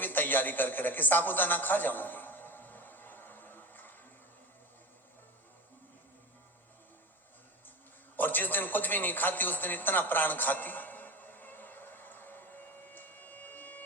तैयारी करके रखी, साबूदाना खा जाऊंगी। और जिस दिन कुछ भी नहीं खाती उस दिन इतना प्राण खाती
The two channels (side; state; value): both; normal; correlation 0.28